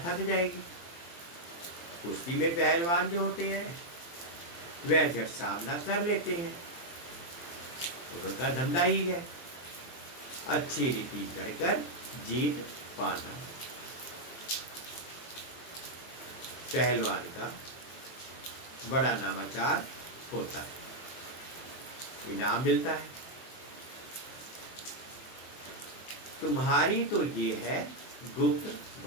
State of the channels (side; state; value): right; late; 23 ms